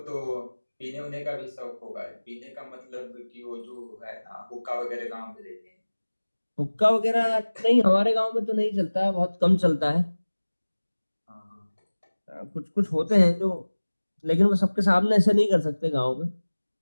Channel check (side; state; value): both; inverted; correlation -1.00